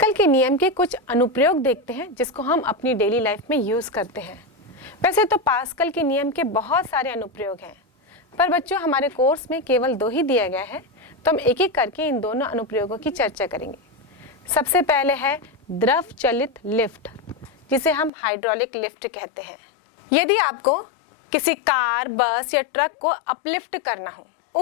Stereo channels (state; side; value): drops out; right; at 18.1 s